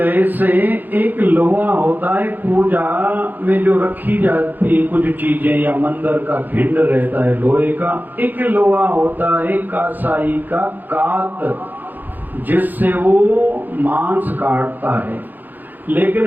एक लोहा होता है पूजा में जो रखी जाती है कुछ चीजें, या मंदिर का भिंड रहता है लोहे का, एक लोहा होता है कासाई का कात जिससे वो मांस काटता है।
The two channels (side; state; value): left; late; 0.086 ms